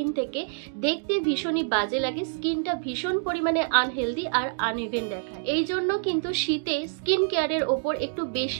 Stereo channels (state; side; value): silent; left; digital silence